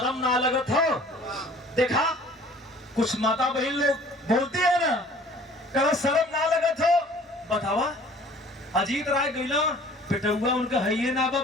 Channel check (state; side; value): normal; both; correlation 0.51